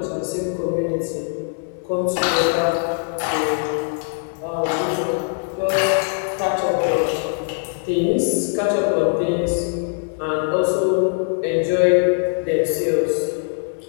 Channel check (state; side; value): silent; right; digital silence